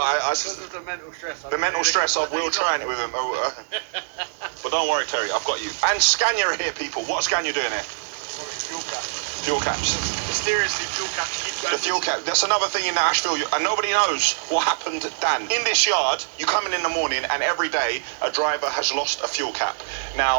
Because of the mental stress. the mental stress of Will trying it with him. But don't worry, Terry, I've got you. And Scania are here, people. What's Scania doing here? Fuel cap. Fuel caps. Mysteriously, fuel cap keep going. The fuel cap. That's another thing in Asheville, and nobody knows what happened, Dan. In this yard, you come in the morning, and every day a driver has lost a fuel cap.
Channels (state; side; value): silent; left; digital silence